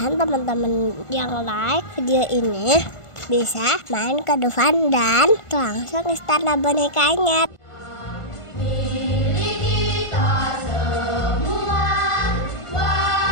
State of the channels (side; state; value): right; late; 1.5 ms